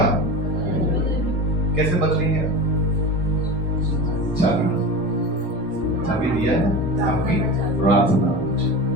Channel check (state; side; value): normal; both; correlation 0.28